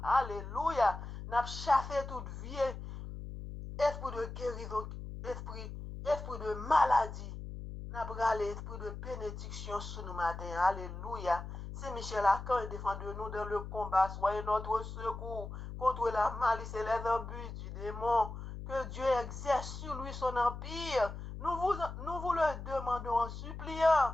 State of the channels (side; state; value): left; noise; hum, 9 dB below the sound